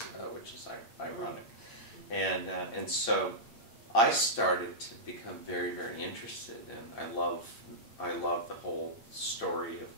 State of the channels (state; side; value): late; right; 8.8 ms